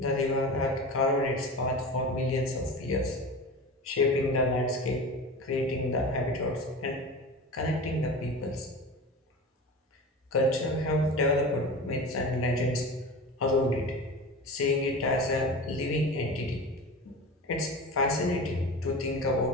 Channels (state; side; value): normal; both; correlation 0.31